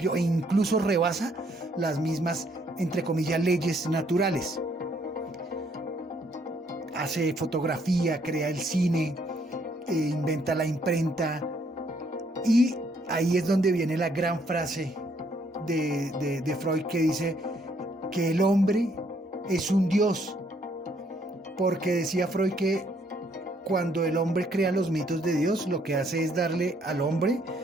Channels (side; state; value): both; normal; correlation 0.68